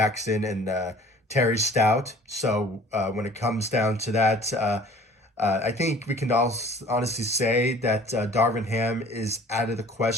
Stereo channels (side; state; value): both; normal; correlation 0.50